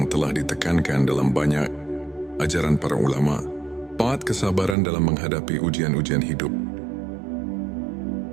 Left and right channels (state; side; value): drops out; left; at 4.8 s